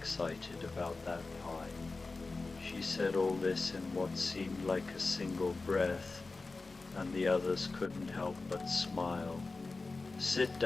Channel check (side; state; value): right; quieter; 3.7 dB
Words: about that pie." She said all this in what seemed like a single breath, and the others couldn't help but smile. "Sit